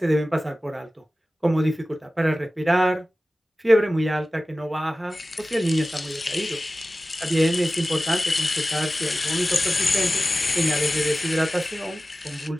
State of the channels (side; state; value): both; normal; correlation 0.96